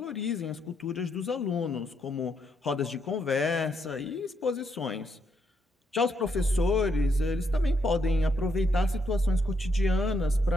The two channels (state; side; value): normal; both; correlation 0.77